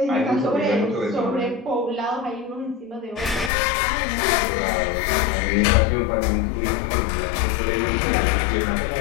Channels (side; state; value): right; drops out; at 3.5 s